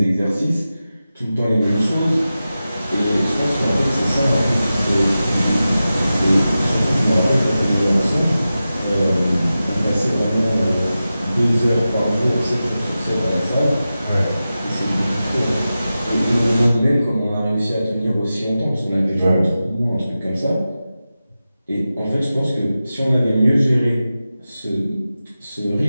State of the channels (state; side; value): inverted; both; correlation -0.93